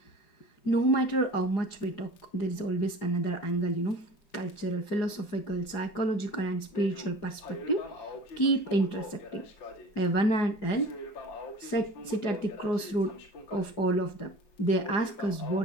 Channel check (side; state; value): right; late; 4.9 ms